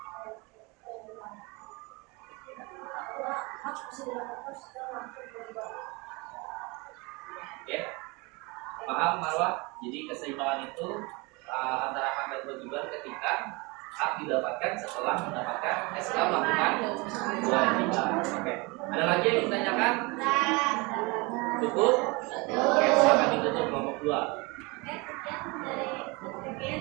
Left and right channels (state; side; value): quieter; left; 26.8 dB